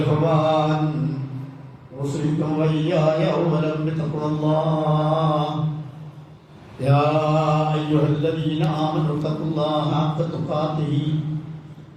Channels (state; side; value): identical; both; correlation 1.00